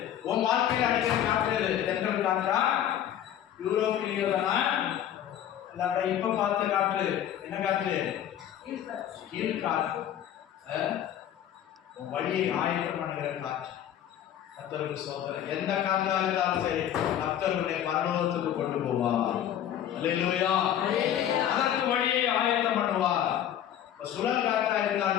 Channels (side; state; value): right; quieter; 10.6 dB